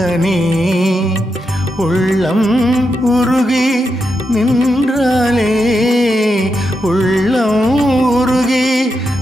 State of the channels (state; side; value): normal; both; correlation 0.85